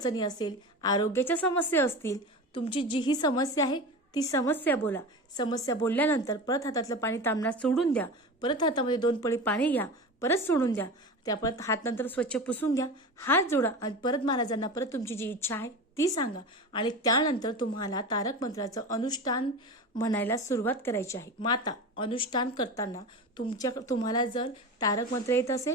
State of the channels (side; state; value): both; normal; correlation 0.29